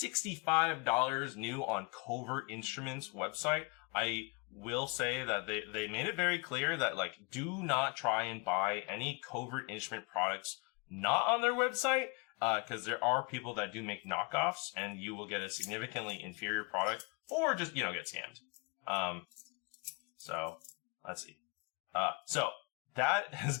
$65 new on Covert Instruments website. I will say that they made it very clear that like do not try and buy any Covert Instrument products not on their website, because there are people that do make knockoffs, and you will get a significantly inferior product, or just get scammed. So let's see. So that has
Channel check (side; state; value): right; quieter; 30.8 dB